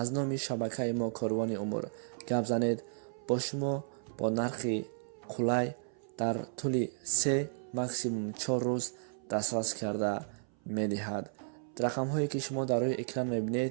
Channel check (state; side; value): silent; left; 55 dB below the other